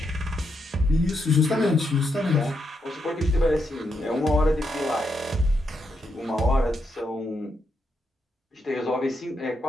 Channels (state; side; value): normal; both; correlation 0.81